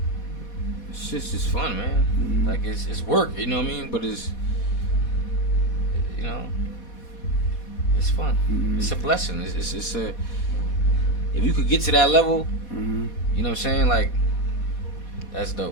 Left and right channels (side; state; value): right; late; 4.2 ms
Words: it's just fun, man. Like it's work, you know what I mean? But it's, you know, it's fun. It's a blessing. It's a, if you could get to that level, you know what I'm saying? Like, that's